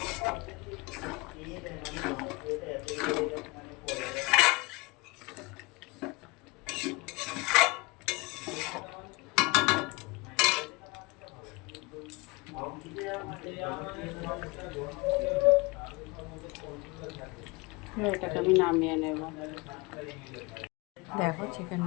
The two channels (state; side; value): quieter; right; 24.8 dB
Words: এটাকে আমি নামিয়ে নেব। দেখো